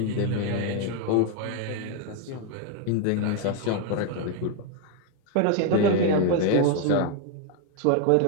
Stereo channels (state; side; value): different; both; correlation 0.01